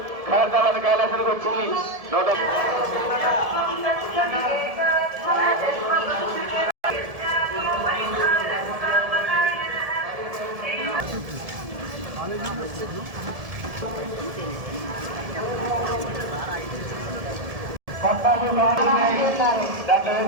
ఖైరతాబాద్ కైలాసానికి వచ్చి నోట దాంట్లో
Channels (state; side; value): late; left; 1.7 ms